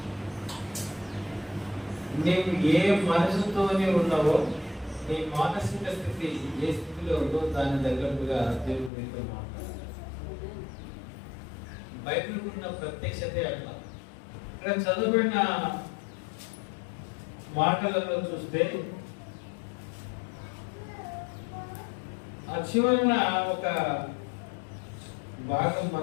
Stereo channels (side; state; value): right; drops out; at 8.9 s